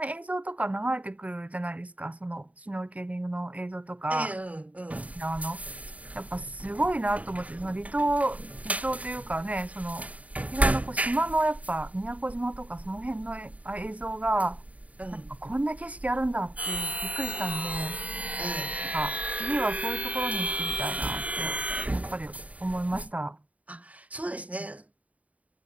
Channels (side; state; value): left; late; 0.069 ms